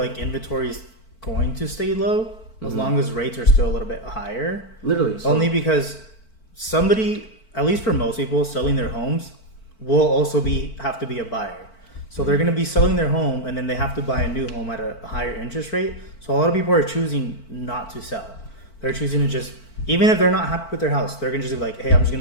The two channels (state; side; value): late; right; 4.5 ms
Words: inventory is going to stay low as long as rates are still a little bit higher. Literally. Only because somebody, at least for most people, selling their homes will also have to be a buyer. So they're going to be selling their home, and then they have to buy a new home at a higher interest rate. So a lot of people are choosing not to sell. They're choosing to just, even if they're not happy with their house, they're going to just be like, hey, I'm just going